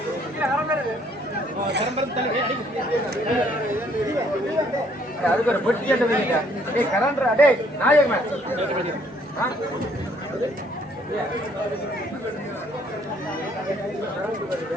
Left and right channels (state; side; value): normal; both; correlation 0.64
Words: அதுக்கு ஒரு பெட்டி கரண்டா டே நாயகமே